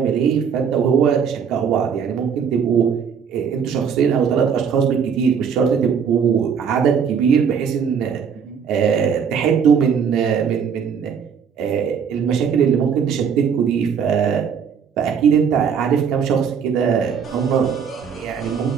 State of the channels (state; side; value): quieter; left; 7.0 dB